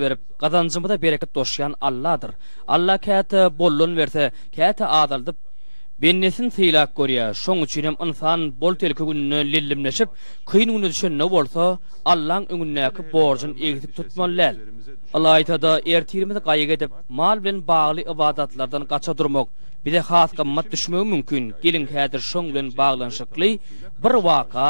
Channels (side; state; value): both; inverted; correlation -1.00